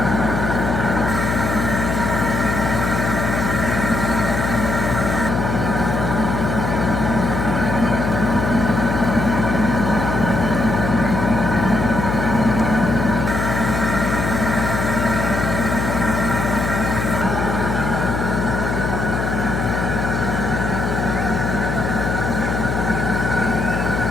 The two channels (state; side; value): noise; left; hum, 1 dB below the sound